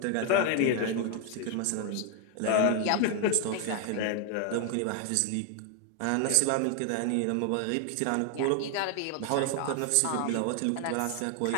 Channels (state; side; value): different; both; correlation 0.00